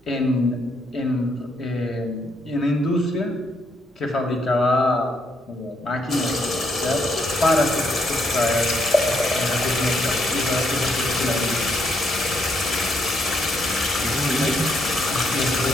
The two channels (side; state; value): both; normal; correlation 0.75